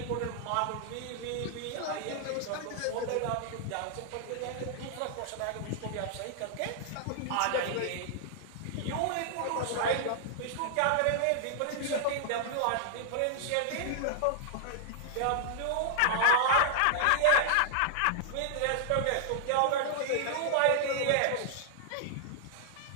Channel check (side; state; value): both; different; correlation -0.01